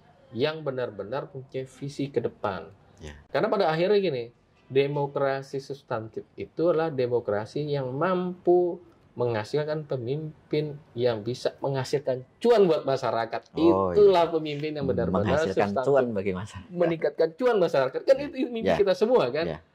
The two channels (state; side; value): identical; both; correlation 1.00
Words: yang benar-benar punya visi ke depan. Ya. Karena pada akhirnya gini, demokrasi substantif itu adalah demokrasi yang mampu menghasilkan pemimpin yang bisa menghasilkan cuan buat masyarakat. Itulah pemimpin yang benar-benar menghasilkan substantif, cuan bagi masyarakat. meningkatkan cuan masyarakat. Kan itu mimpi kita semua kan.